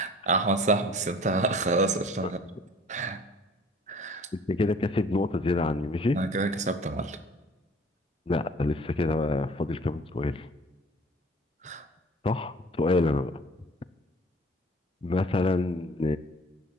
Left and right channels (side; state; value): both; normal; correlation 0.49